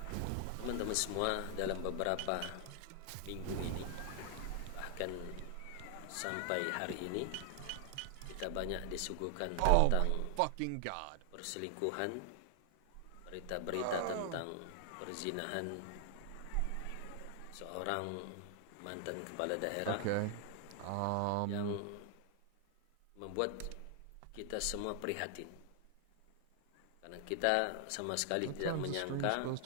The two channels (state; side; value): different; both; correlation 0.00